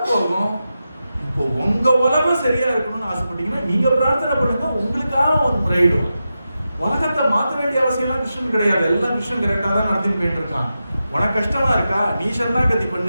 போகும். இப்போ உங்க உலகம் சரியா இருக்கணும்னு ஆசைப்பட்டீங்கன்னா நீங்க பிரார்த்தனை பண்ணுங்க, உங்களுக்காக அவன் முறையிடுவான். உலகத்தை மாற்ற வேண்டிய அவசியம் எல்லாம் கிருஷ்ணன் கிடையாது. எல்லாம் கிருஷ்ணன் கரெக்டா தான் நடத்தின்னு போயிட்டு இருக்கான். உனக்கு கஷ்டமா இருக்கா, நீ சரணாகதி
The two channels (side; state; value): both; inverted; correlation -0.90